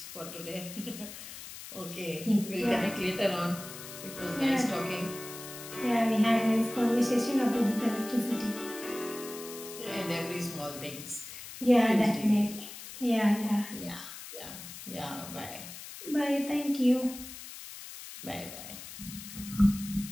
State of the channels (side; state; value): left; noise; hiss, 12 dB below the sound